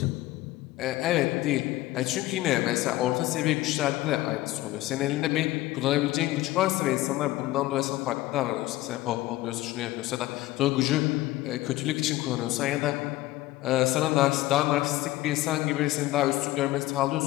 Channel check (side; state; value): right; quieter; 17.1 dB